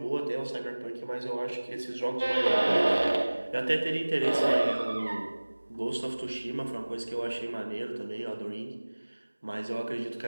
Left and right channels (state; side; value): inverted; both; correlation -1.00